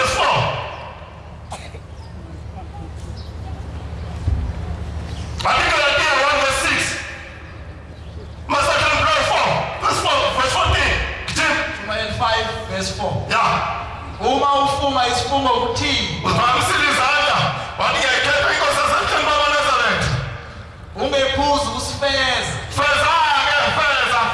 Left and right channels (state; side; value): identical; both; correlation 1.00